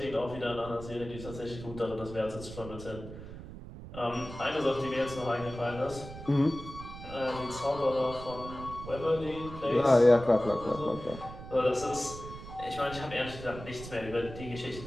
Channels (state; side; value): noise; right; rumble, 12 dB below the sound